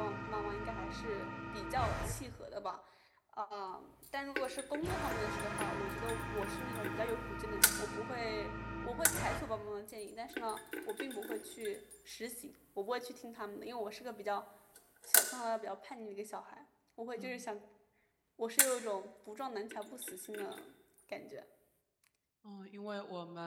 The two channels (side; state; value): both; identical; correlation 1.00